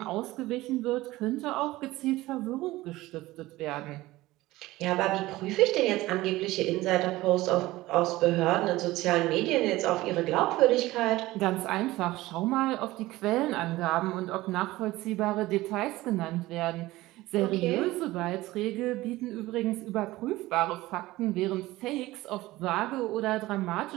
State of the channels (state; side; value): quieter; left; 18.1 dB